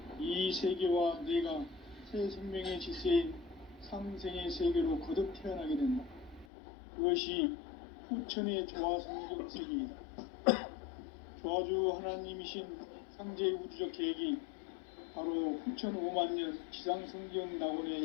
이 세계와 내가 새 생명의 질서인 상생의 세계로 거듭 태어나게 된다. 그것이 후천의 조화성경 세계이다. 조화주 하나님이신 상제의 우주적 계획이 바로 후천 5만 년 지상성경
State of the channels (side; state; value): right; drops out; at 6.5 s